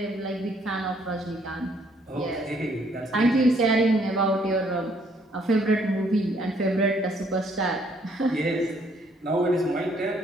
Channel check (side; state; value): both; normal; correlation 0.66